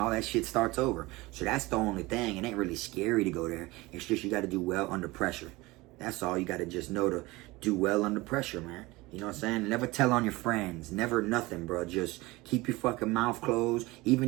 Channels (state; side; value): quieter; left; 21.4 dB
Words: that shit starts over. So that's the only thing. It ain't really scary to go there. It's just you got to do well under pressure. That's all. You got to just know to do well under pressure, man. You know what I'm saying? Never tell on your friends. Never nothing, bro. Just keep your fucking mouth closed,